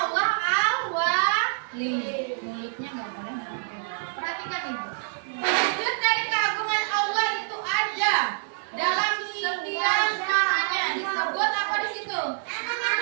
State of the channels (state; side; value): silent; left; digital silence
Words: Allah Al-Wali. Mulutnya nggak boleh ngomong. Perhatikan ibu. Wujud dari keagungan Allah itu ada dalam setiap namanya. Disebut apa di situ?